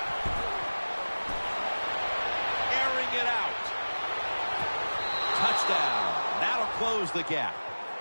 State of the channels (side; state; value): both; inverted; correlation -1.00